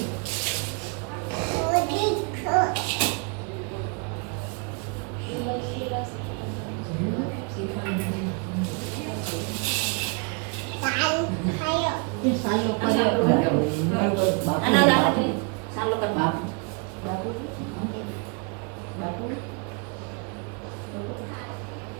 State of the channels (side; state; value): left; quieter; 35.0 dB